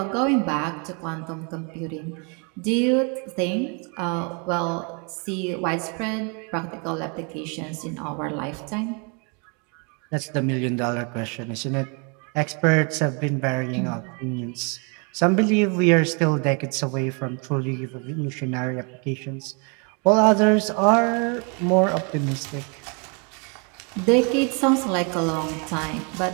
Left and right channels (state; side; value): quieter; left; 35.2 dB